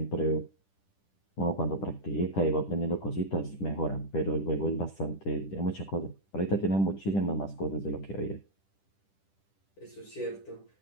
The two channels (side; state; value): right; late; 10 ms